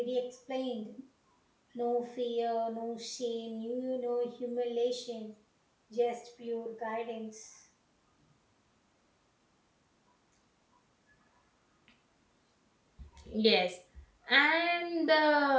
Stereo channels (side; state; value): both; identical; correlation 1.00